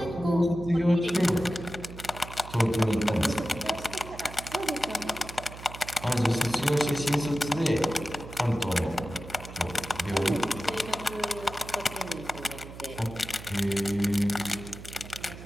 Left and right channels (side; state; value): right; noise; hum, 14 dB below the sound